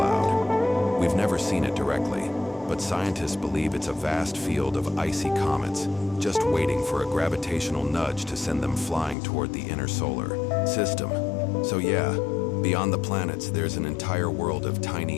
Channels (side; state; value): right; drops out; at 9.2 s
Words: We've never seen it directly, but scientists believe it's a vast field of icy comets, just waiting for a gravitational nudge to send them flying toward the inner solar system. So yeah, beyond the planets, there's an entire world of